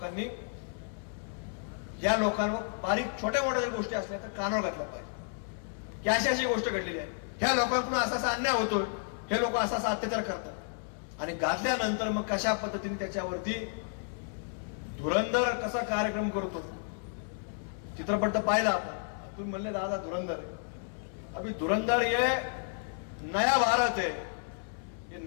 या लोकांवर बारीक छोट्या मोठ्या गोष्टी असल्या तर कानावर घातलं पाहिजे की अशी अशी गोष्ट घडलेली आहे, ह्या लोकांकडून असा असा अन्याय होतोय, हे लोक असा असा अत्याचार करतात. आणि घातल्यानंतर मग कशा पद्धतीने त्याच्यावरती धुरंधर कसा कार्यक्रम करतो, चित्रपट तर पाहिला आपण. तुम्ही म्हणले दादा धुरंधर, अभी धुरंधर ये नया भारत है. ये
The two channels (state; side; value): silent; right; digital silence